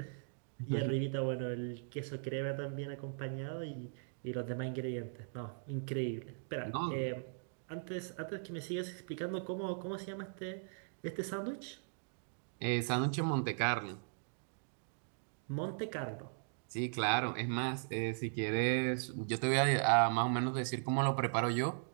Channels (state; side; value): silent; left; digital silence